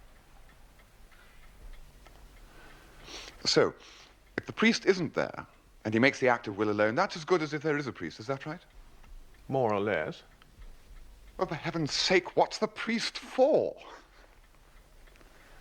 So, if the priest isn't there, and he makes the act of will alone, that's as good as if there is a priest, is that right? More or less. Well, for heaven's sake, what's the priest for?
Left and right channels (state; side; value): identical; both; correlation 1.00